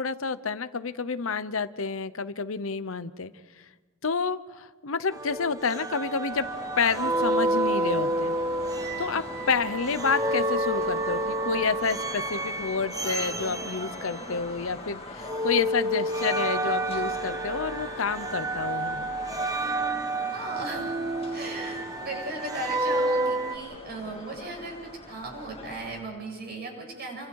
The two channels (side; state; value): both; normal; correlation 0.06